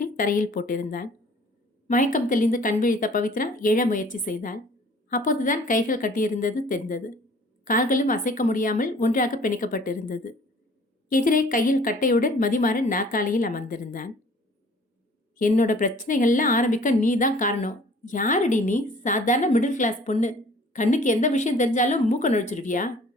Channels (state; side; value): normal; both; correlation 0.52